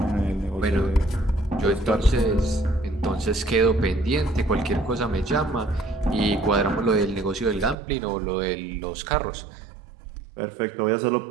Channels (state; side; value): drops out; left; at 7.8 s